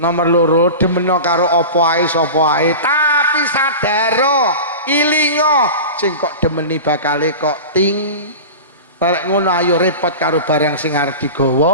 Nomor 2 demeno karo apa ae sapa ae tapi sadaro ilingo sing kok demeni bakale kok ting. Lek ngono ayo repot karo barang sing arep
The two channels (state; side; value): inverted; both; correlation -0.30